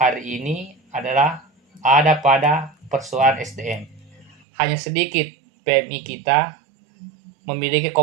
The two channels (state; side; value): drops out; left; at 4.4 s